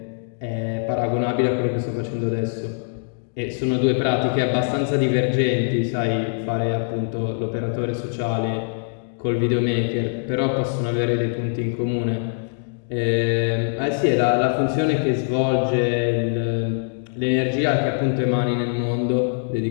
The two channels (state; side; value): silent; right; digital silence